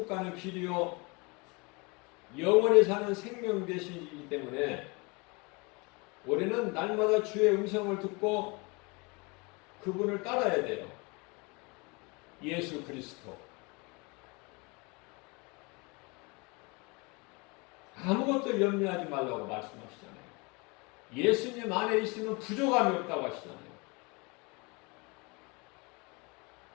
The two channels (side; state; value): right; quieter; 28.3 dB